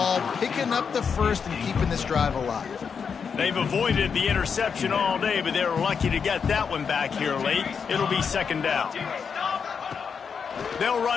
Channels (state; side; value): quieter; right; 6.3 dB